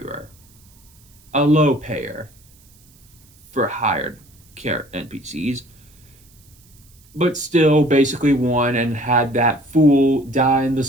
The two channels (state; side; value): noise; right; hiss, 29 dB below the sound